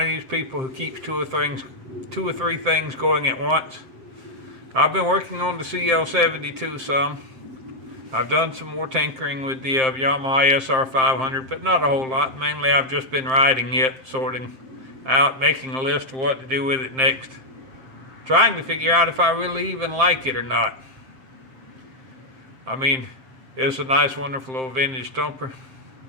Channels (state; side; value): late; left; 7.6 ms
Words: these people who keeps two or three things going at once. I've been working on the CL72 some. I've done some more tinkering with the Yamaha XS650, but not a whole lot. Mainly I've just been riding it, sorting out, making a list of what to do with it next, trying to figure out if I really even like it or not. I mean, it's a nice, wonderful old vintage thumper.